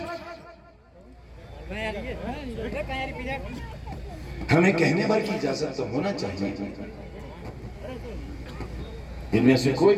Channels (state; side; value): identical; both; correlation 1.00